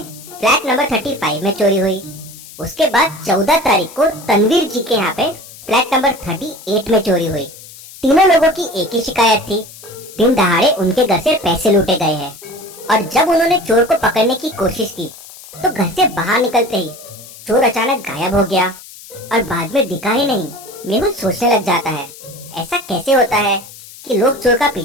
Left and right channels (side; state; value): left; noise; hiss, 18 dB below the sound